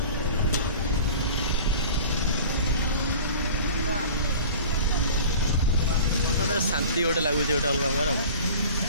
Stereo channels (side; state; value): both; inverted; correlation -0.40